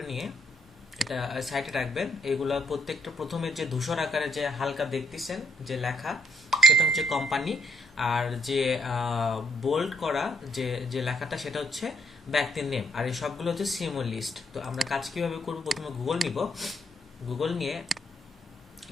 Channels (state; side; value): normal; both; correlation 0.73